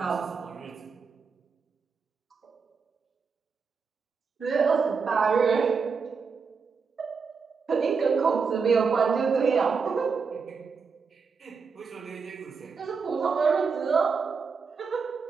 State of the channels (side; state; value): left; quieter; 5.4 dB